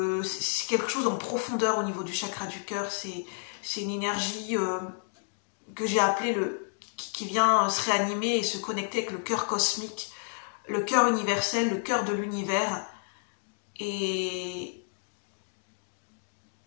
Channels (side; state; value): right; silent; digital silence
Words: c'est quelque chose en profondeur au niveau du chakra du cœur, c'est une énergie que j'ai appelée qui vient se réanimer et se connecter avec le cœur cosmique, le cœur universel, le cœur de l'univers. Et